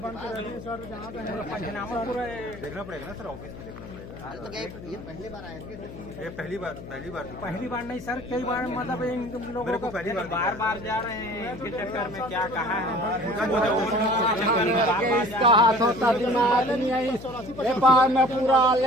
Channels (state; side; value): noise; left; hum, 13 dB below the sound